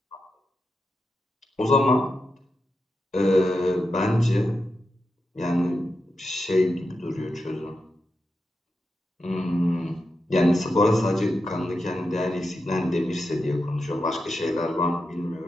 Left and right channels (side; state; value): both; normal; correlation 0.88